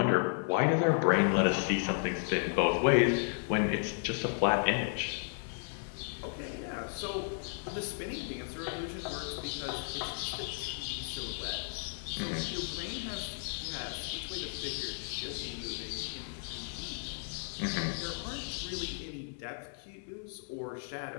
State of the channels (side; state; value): right; silent; 55 dB below the other